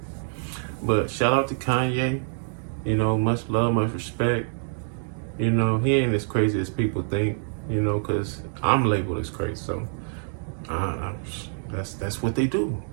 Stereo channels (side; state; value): left; silent; digital silence